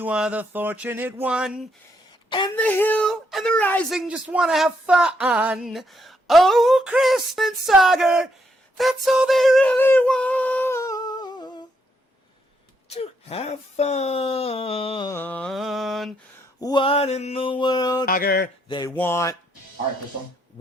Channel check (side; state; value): both; normal; correlation 0.76